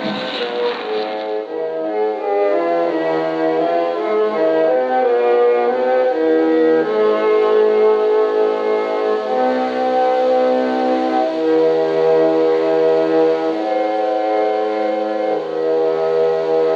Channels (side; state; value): both; identical; correlation 1.00